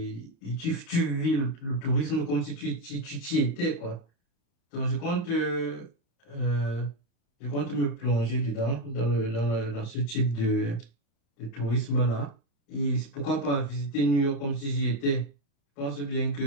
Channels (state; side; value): late; right; 35 ms